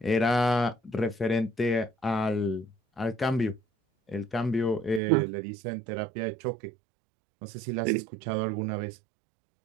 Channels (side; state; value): left; drops out; at 5.0 s